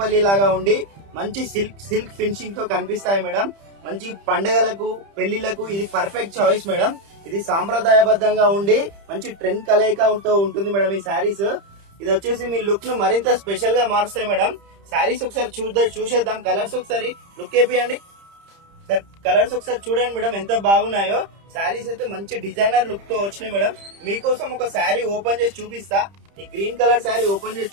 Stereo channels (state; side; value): late; left; 30 ms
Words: లాగా ఉండి మంచి సిల్క్ ఫినిషింగ్ తో కనిపిస్తాయి మేడం. మంచి పండుగలకు పెళ్లిళ్లకు ఇది పర్ఫెక్ట్ చాయిస్ మేడం. ఇది సాంప్రదాయబద్ధంగా ఉండి మంచి ట్రెండ్ కలయికతో ఉంటుంది మేడం. ఈ శారీస్ ఇది వచ్చేసి మీ లుక్ ను మరింత స్పెషల్ గా మారుస్తాయి మేడం. శారీస్ ఒకసారి చూసేద్దాం. కలర్స్ ఒకసారి లుక్ వేపియండి సార్. కలర్స్ ఒకసారి చూడండి మేడం ఎంత బాగున్నాయో. శారీస్ అయితే మంచి డిజైనర్ లుక్ తో వచ్చినాయి మేడం. మీకోసం ఒక శారీ ఓపెన్ చేసి చూపిస్తా. ఈ గ్రీన్ కలర్ శారీ ఓపెన్ చేసి